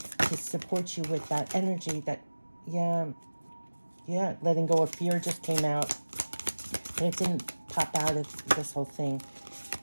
support you with that energy that, yeah, letting go of fear just came out. And it didn't pop out of this whole thing.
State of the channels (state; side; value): inverted; both; correlation -1.00